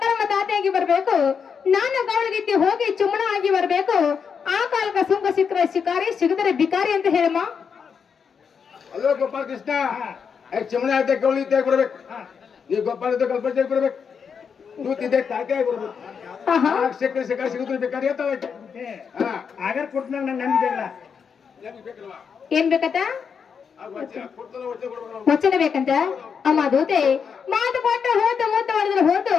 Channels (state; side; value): quieter; right; 6.5 dB